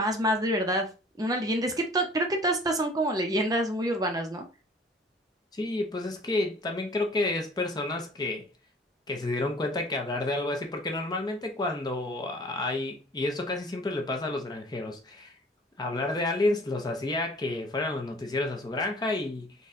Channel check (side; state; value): both; normal; correlation 0.50